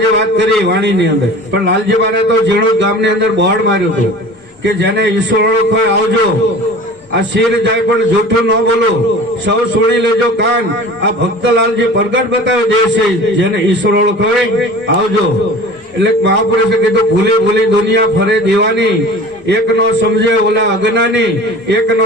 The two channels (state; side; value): normal; both; correlation 0.40